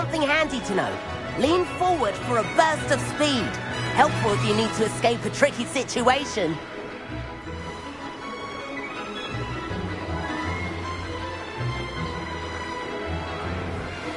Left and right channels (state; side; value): identical; both; correlation 1.00